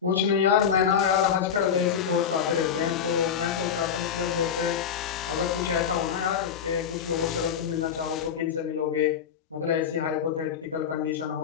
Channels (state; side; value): quieter; right; 7.8 dB